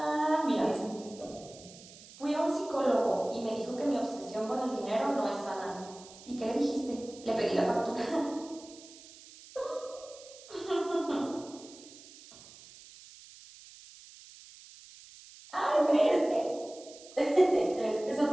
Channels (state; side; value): noise; right; hiss, 19 dB below the sound